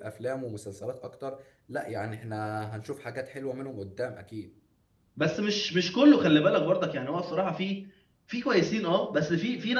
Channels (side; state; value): both; identical; correlation 1.00